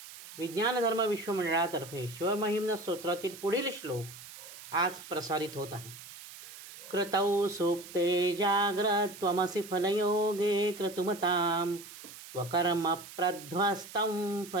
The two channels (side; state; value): right; noise; hiss, 15 dB below the sound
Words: विज्ञान धर्म विश्वमंडळातर्फे शिवमहिम्न स्तोत्रातील पुढील श्लोक आज प्रसारित होत आहे. कृतौ सुप्ते जाग्रत्वमसि फलयोगे क्रतुमतां वकर्म प्रध्वस्तं